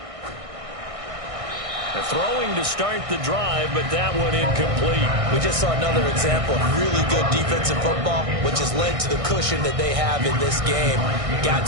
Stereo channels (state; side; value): late; left; 1.6 ms